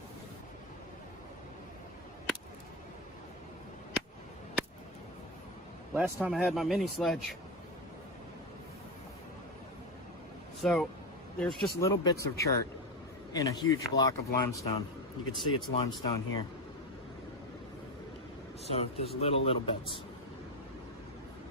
Last time I had my mini sledge. So there's just little bits of chert in a huge block of limestone. You can see it's limestone here. So there's little bits.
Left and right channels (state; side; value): normal; both; correlation 0.14